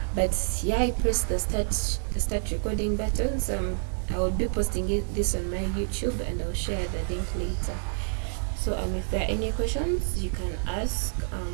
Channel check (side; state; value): left; silent; 59 dB below the other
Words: But yeah, I pressed the start recording button. So I will be posting this on my YouTube, and I'll share the link later. So if there are any questions, you can ask,